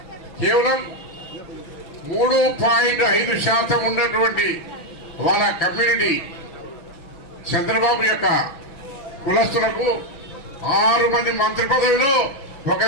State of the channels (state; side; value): late; right; 6.2 ms